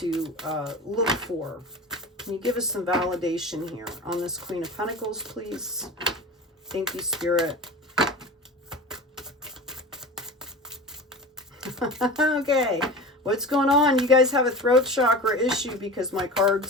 look for? Can you give us some validation here on this Queen of Pentacles, please? Thank you, Spirit. Okay, what's going on? You guys have a throat chakra issue because my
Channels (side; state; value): both; normal; correlation 0.33